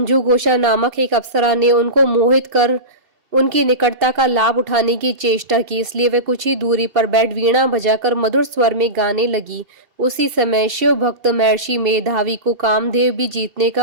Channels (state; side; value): late; left; 2.4 ms